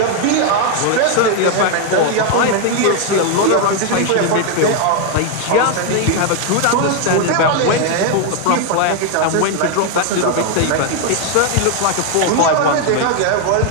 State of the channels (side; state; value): both; different; correlation 0.01